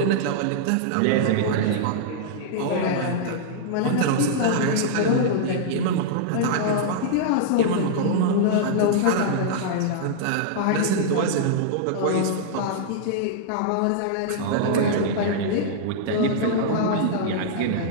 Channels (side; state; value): both; different; correlation -0.01